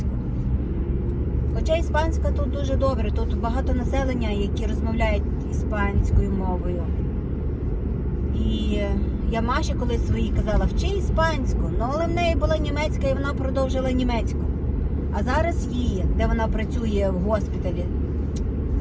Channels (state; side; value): identical; both; correlation 1.00